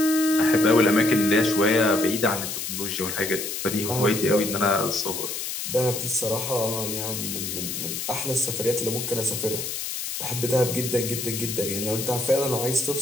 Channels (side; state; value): left; noise; hiss, 5 dB below the sound